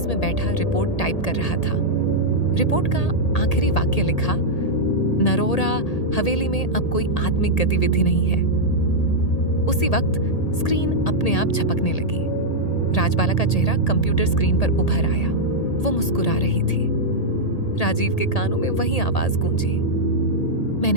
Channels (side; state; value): right; late; 1.8 ms